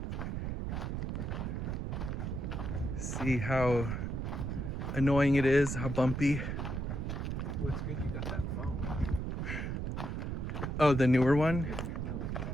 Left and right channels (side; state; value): right; noise; rumble, 2 dB below the sound